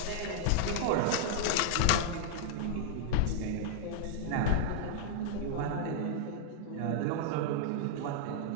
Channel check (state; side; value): different; both; correlation -0.01